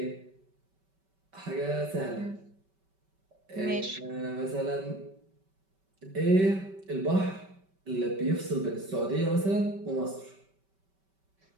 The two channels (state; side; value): late; left; 5.2 ms